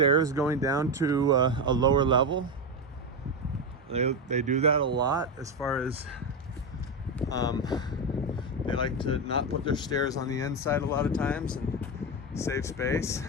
going down to a lower level. They do that a lot, as far as they like to not put their stairs on the inside a lot of times and save space.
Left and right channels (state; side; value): normal; both; correlation 0.12